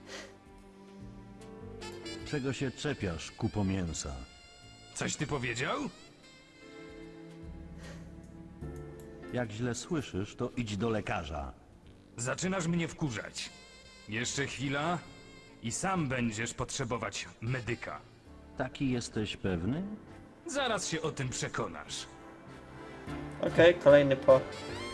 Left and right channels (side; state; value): both; identical; correlation 1.00